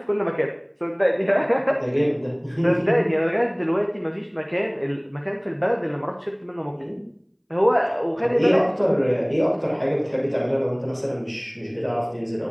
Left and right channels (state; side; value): identical; both; correlation 1.00